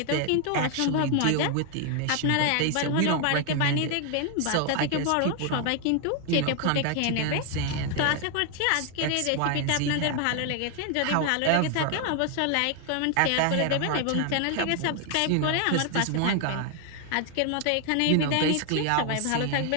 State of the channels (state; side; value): different; both; correlation 0.00